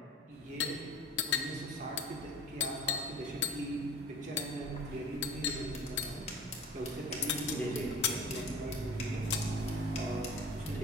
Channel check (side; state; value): both; normal; correlation 0.39